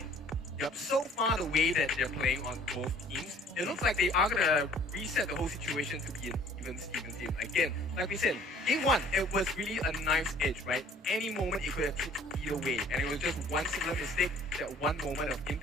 Yep, so far the way that they're playing on both teams, it looks like they are going to reset the whole situation to be an even team. Again, like we said, game one, it was really a knife's edge, right? Any moment it could have tipped either way. And it was just one single mistake, that one moment of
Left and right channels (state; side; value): normal; both; correlation 0.54